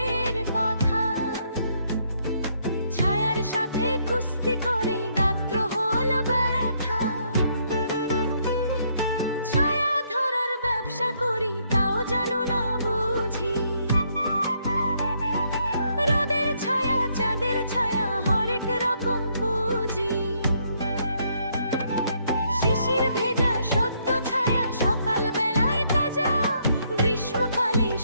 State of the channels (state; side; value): inverted; both; correlation -0.71